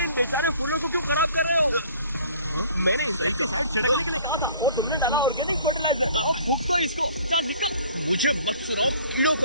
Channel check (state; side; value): inverted; both; correlation -0.52